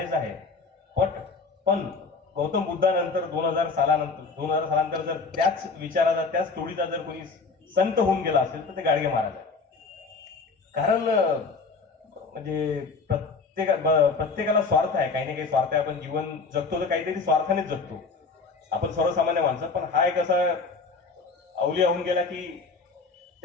आहे, पण गौतम बुद्धानंतर 2000 सालानंतर जर त्याच विचाराचा, त्याच तोडीचा जर कोणी संत होऊन गेला असेल तर ते गाडगे महाराज आहे. कारण म्हणजे प्रत्येकाला स्वार्थ आहे, काही ना काही स्वार्थ आहे. आपण जीवन जगतो तर काहीतरी स्वार्थानेच जगतो आपण, सर्वसामान्य माणसं. पण हा एक असा अवलिया होऊन गेला की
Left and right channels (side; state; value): right; quieter; 4.4 dB